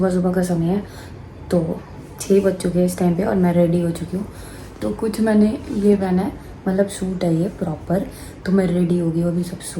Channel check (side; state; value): both; identical; correlation 1.00